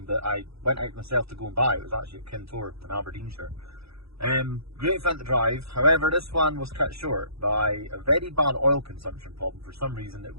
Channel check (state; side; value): late; left; 0.77 ms